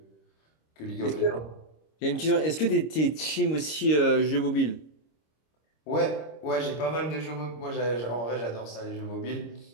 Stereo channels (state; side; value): late; right; 26 ms